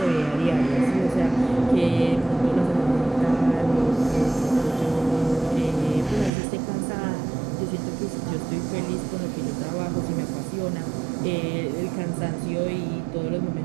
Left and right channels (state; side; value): drops out; left; at 6.3 s